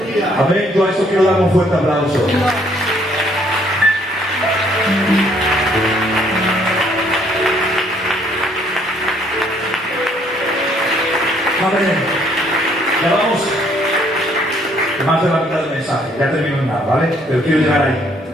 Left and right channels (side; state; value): both; normal; correlation 0.65